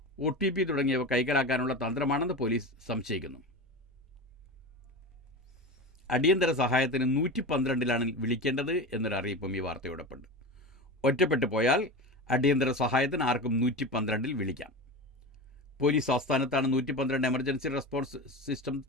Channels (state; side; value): normal; both; correlation 0.26